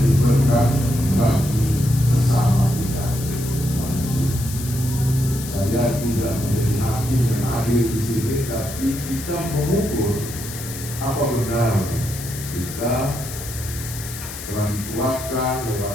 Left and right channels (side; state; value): left; noise; hiss, 11 dB below the sound